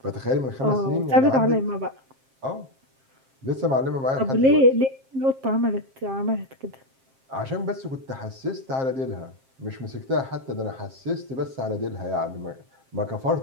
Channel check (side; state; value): left; late; 7.5 ms